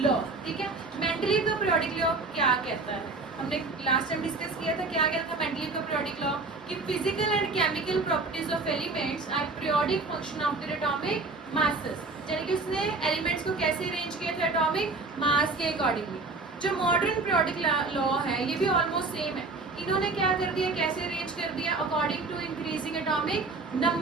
लॉ। ठीक है, मेंडलीव का पीरियोडिक लॉ क्या कहता है, हमने लास्ट टाइम डिस्कस किया था। क्या कहता था मेंडलीव का पीरियोडिक लॉ कि physical and chemical properties of elements are periodic function of their atomic masses. यानी कि उसने एलिमेंट्स को कैसे अरेंज किया था एटॉमिक मास के अकॉर्डिंगली। जो मॉडर्न पीरियोडिक लॉ है ये भी ऑलमोस्ट सेम है। इन्होंने क्या कर दिया, कैसे अरेंज कर दिया, according to increasing atomic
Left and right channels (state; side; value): quieter; left; 3.7 dB